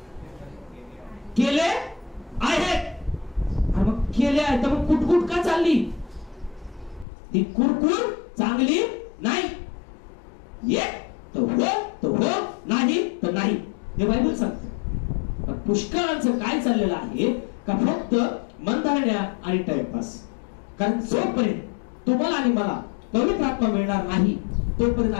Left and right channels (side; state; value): right; drops out; at 7.1 s